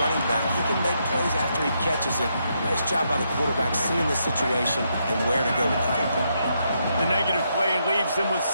running back. He can make plays after he catches it. Nice job by the quarterback seeing the situation and where to go with the football. The negative play leaves him with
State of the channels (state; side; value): inverted; both; correlation -0.79